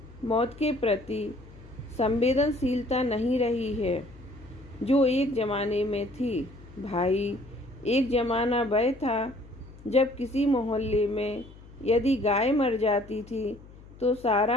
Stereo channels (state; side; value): noise; left; hum, 20 dB below the sound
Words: मौत के प्रति संवेदनशीलता नहीं रही है जो एक ज़माने में थी। भाई, एक ज़माना वह था जब किसी मोहल्ले में यदि गाय मर जाती थी तो